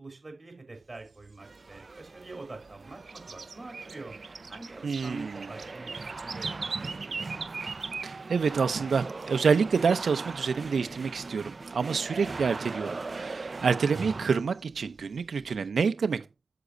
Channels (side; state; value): left; quieter; 5.0 dB